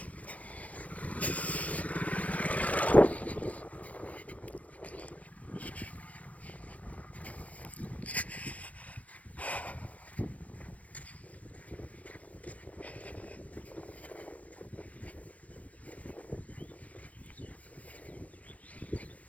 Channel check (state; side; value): late; right; 0.067 ms